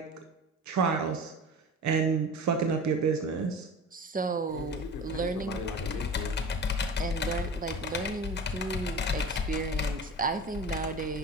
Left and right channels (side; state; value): both; normal; correlation 0.35